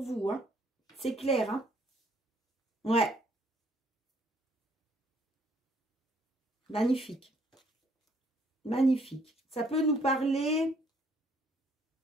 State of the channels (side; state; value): both; normal; correlation 0.65